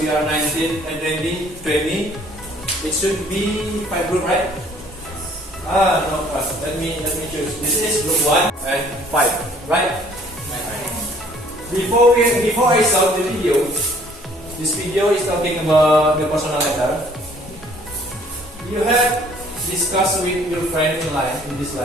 are 19 and 20, it should be 5 groups, right? No, let me choose. This is group 1 and 5, right? Before I start the video, this video is talking about the personal letter. You have discussed with your friend in this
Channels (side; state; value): both; normal; correlation 0.58